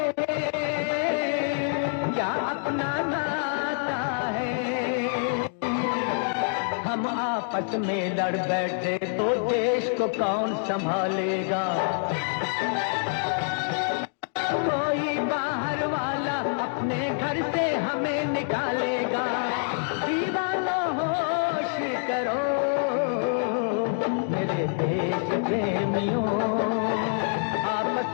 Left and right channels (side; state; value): right; silent; digital silence